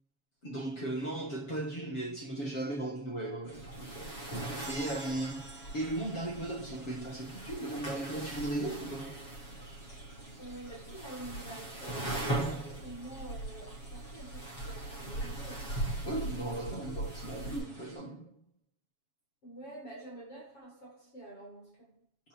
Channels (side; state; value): right; late; 7.2 ms